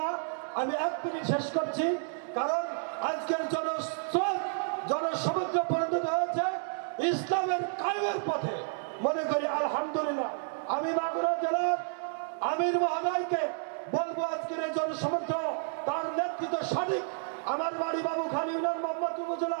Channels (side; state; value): left; silent; digital silence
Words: আমি 1 মিনিট শেষ করছি, কারণ আজকের জনস্রোত, জনসমুদ্র পরিণত হয়েছে ইসলামের কায়েমের পথে। মনে করি আলহামদুলিল্লাহ। আমি মাগুরা জেলার আমির মহোদয়কে বলবো, আজকের এই জনসমুদ্র, তার নেতৃত্ব সঠিক। আমার বাড়ি বাবুখালী ইউনিয়ন, মোহাম্মদপুর